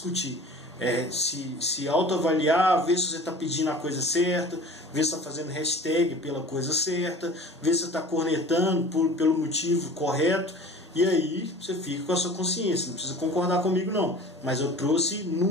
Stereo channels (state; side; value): normal; both; correlation 0.42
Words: Se autoavaliar, ver se você está pedindo a coisa certa, ver se está fazendo hashtag pela coisa certa, ver se você está cornetando pelo motivo correto. E aí você fica com a sua consciência, não precisa concordar comigo não, mas eu trouxe